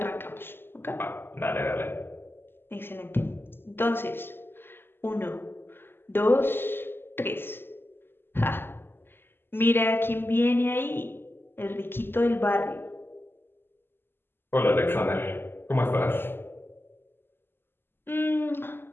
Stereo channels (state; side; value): late; right; 0.10 ms